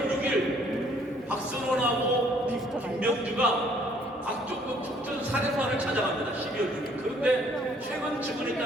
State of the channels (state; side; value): normal; both; correlation 0.62